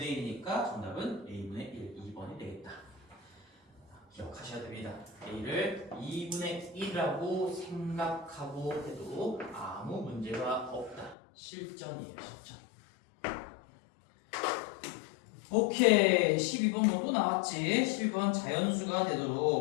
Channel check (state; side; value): drops out; right; at 11.2 s